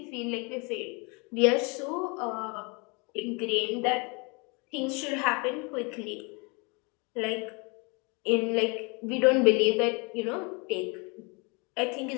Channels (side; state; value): right; quieter; 30.7 dB